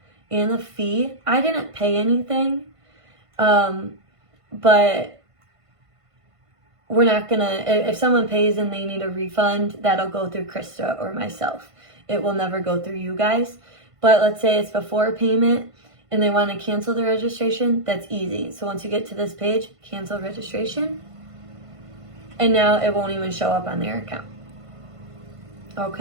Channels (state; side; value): late; left; 1.5 ms